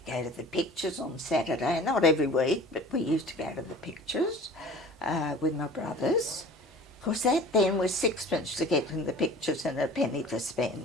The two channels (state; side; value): normal; both; correlation 0.43